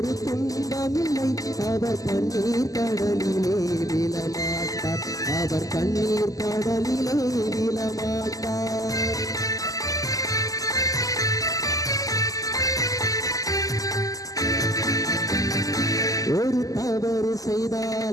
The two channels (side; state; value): right; late; 0.17 ms